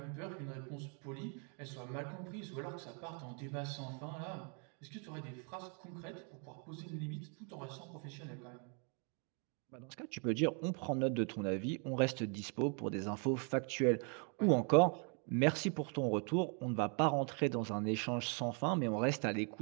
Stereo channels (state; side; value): quieter; left; 39.0 dB